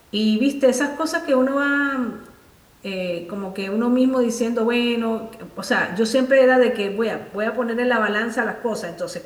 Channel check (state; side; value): identical; both; correlation 1.00